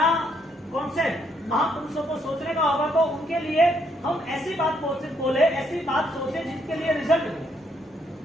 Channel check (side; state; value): both; normal; correlation 0.72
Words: कॉन्सेप्ट महापुरुषों को सोचने का होगा तो उनके लिए हम ऐसी बात बोले, ऐसी बात सोचे जिसके लिए रिजल्ट मिले।